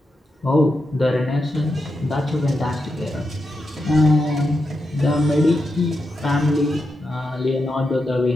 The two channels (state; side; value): normal; both; correlation 0.86